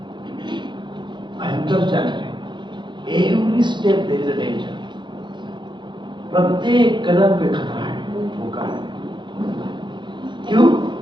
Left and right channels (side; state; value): left; late; 0.23 ms